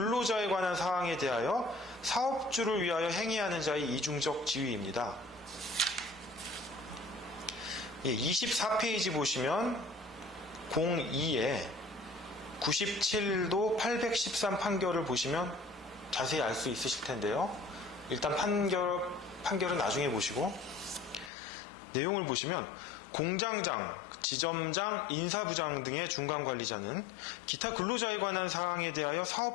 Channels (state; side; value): drops out; right; at 21.3 s